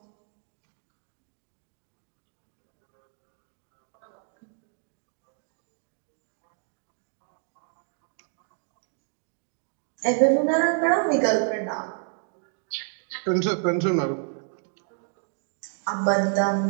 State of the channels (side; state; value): left; silent; 58 dB below the other